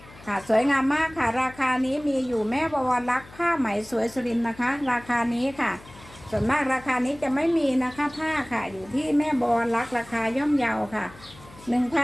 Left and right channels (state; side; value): noise; left; hum, 21 dB below the sound